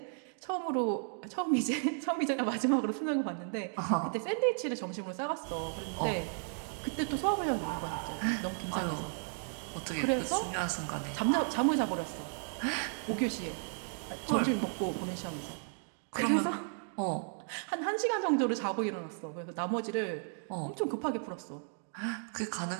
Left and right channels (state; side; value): silent; left; 55 dB below the other